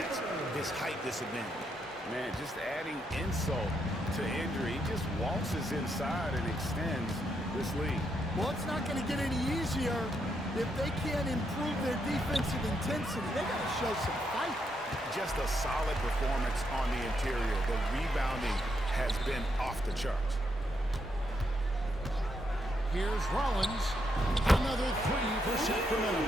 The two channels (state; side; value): normal; both; correlation 0.79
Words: his height disadvantage. Man, just adding insult to injury, he just waltzes inside and extends this lead. Well, it's not going to get any easier if they can't improve their defensive intensity. They got to show some fight. Just a solid performance on the interior. The rebounding has been off the charts. Here's Rollins. Another three for Sacramento.